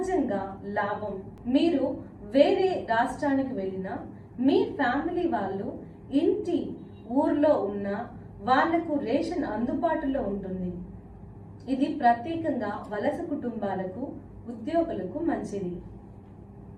లాభం. మీరు వేరే రాష్ట్రానికి వెళ్ళినా మీ ఫ్యామిలీ వాళ్ళు ఇంటి ఊర్లో ఉన్న వాళ్లకు రేషన్ అందుబాటులో ఉంటుంది. ఇది ప్రత్యేకంగా వలస కుటుంబాలకు, ఉద్యోగులకు మంచిది.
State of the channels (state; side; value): identical; both; correlation 1.00